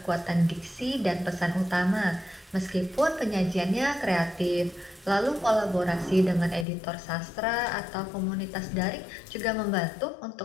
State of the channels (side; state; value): right; drops out; at 6.7 s